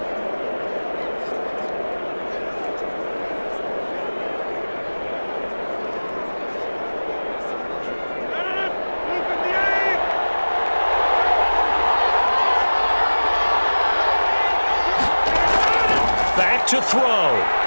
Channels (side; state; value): both; inverted; correlation -1.00